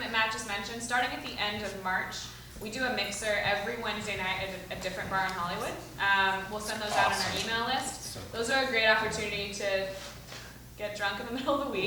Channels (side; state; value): both; identical; correlation 1.00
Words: that Matt just mentioned. Starting at the end of March, we do a mixer every Wednesday night at a different bar in Hollywood. We'll send those out on our email list. Those are a great opportunity to get drunk in the middle of the